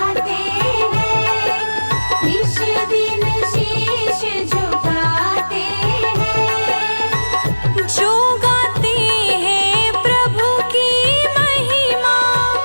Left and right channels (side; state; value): both; inverted; correlation -1.00